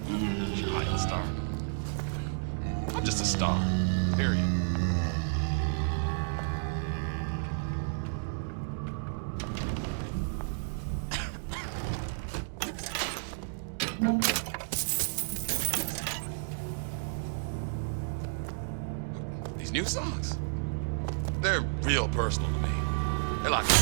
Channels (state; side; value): silent; left; digital silence